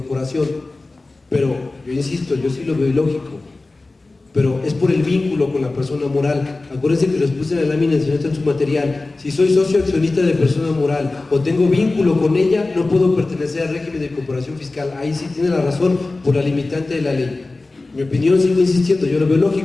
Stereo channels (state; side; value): quieter; right; 3.3 dB